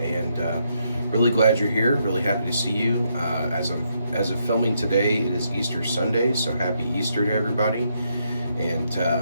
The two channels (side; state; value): both; inverted; correlation -0.77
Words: really glad you're here. Really happy to see you. As of filming today, it is Easter Sunday, so happy Easter to everybody. And